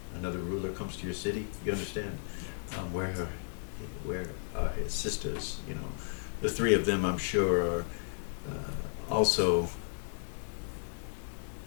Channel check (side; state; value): right; silent; digital silence